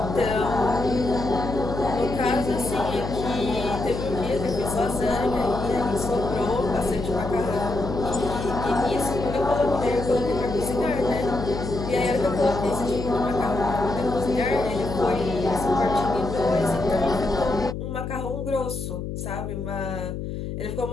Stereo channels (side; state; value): left; noise; hum, 6 dB below the sound